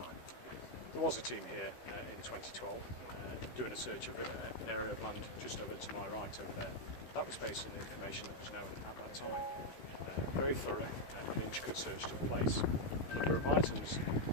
There was a team here in 2012 doing a search of an area of land just over to my right over there. That was based on the information that was known at that time. Very thorough and intricate search took place. A number of items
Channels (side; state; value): right; late; 16 ms